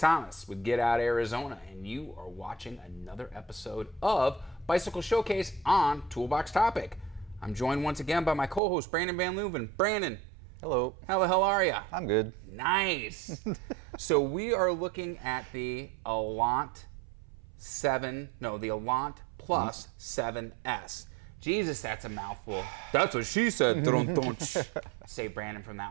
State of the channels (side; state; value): left; drops out; at 8.6 s